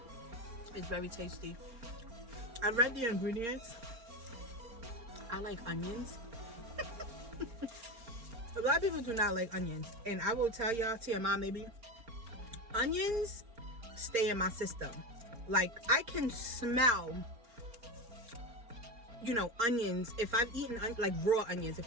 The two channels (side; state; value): left; late; 4.4 ms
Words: It's very tasty. I read the ingredients. I like onions. A lot of people do not like onions. And I will tell y'all, TMI maybe, onions stay in my system. Like, I can smell, you know, onions. If I've eaten, like, raw onions.